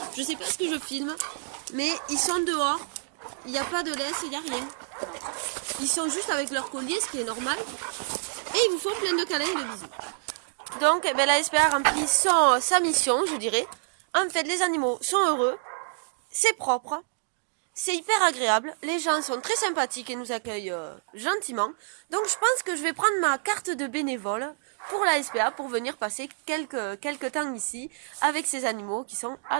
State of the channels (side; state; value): left; silent; digital silence